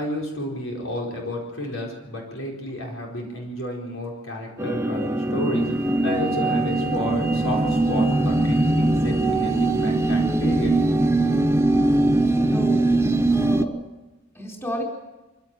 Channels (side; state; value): both; normal; correlation 0.81